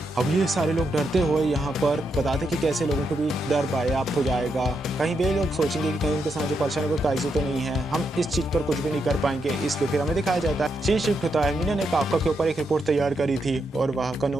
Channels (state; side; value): normal; both; correlation 0.82